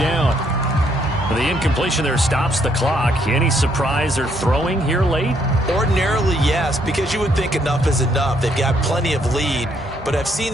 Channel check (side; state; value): both; normal; correlation 0.71